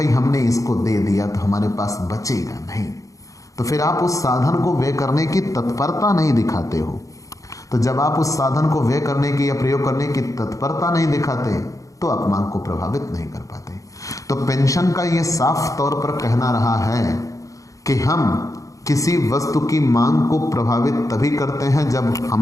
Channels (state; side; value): late; right; 0.16 ms